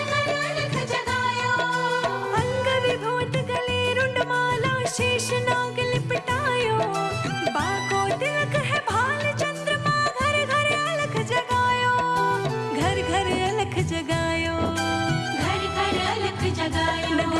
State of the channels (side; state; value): both; identical; correlation 1.00